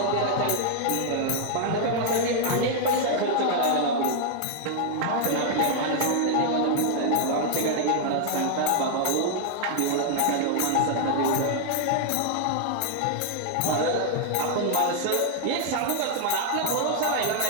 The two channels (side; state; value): both; different; correlation 0.00